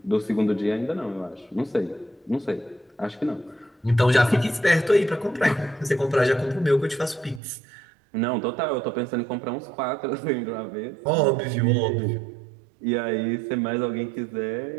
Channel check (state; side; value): drops out; left; at 7.4 s